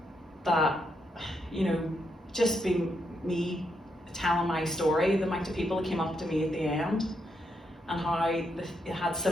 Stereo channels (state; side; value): normal; both; correlation 0.80